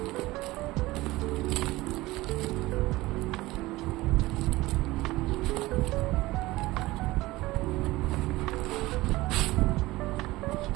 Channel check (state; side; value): quieter; left; 19.2 dB